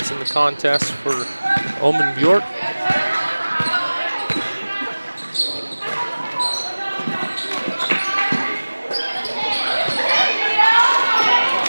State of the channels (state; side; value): inverted; both; correlation -1.00